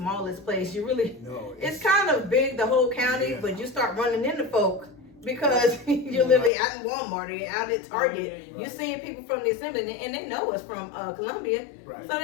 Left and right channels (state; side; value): drops out; right; at 6.5 s